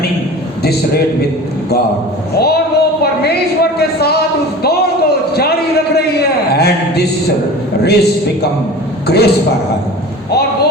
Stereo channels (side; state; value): both; normal; correlation 0.37